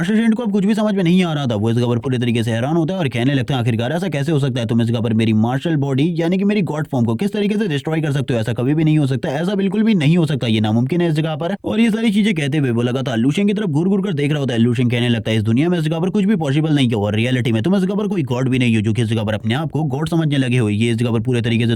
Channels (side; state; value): both; identical; correlation 1.00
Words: शेंट को अब कुछ भी समझ में नहीं आ रहा था। वो इस जगह पर पूरे तरीके से हैरान होता है और कहने लगता है आखिरकार ऐसा कैसे हो सकता है? तुम इस जगह पर मेरी मार्शल बॉडी यानी कि मेरी गॉड फॉर्म को किस तरीके से डिस्ट्रॉय कर सकते हो? ऐसा कभी भी नहीं हो सकता, ऐसा बिल्कुल भी नहीं हो सकता, ये नामुमकिन है इस जगह पर। और ये सारी चीजें कहते हुए वो लगातार लू शेंग की तरफ घूर घूर कर देख रहा होता है। लू शेंग कहने लगता है इस दुनिया में इस जगह पर कुछ भी पॉसिबल नहीं है और रियलिटी में तुम इस जगह पर कोई गॉड भी नहीं हो जो कि इस जगह पर अपने आप को गॉड समझने लगे हो। ये इस जगह पर पूरे तरीके से